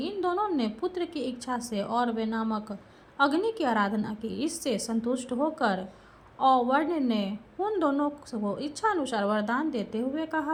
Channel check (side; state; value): both; identical; correlation 1.00